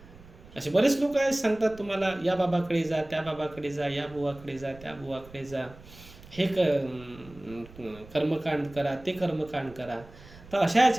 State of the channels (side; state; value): right; noise; rumble, 20 dB below the sound